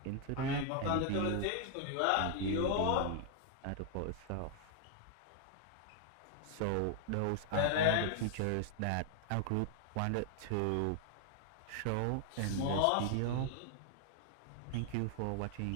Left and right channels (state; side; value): different; both; correlation 0.00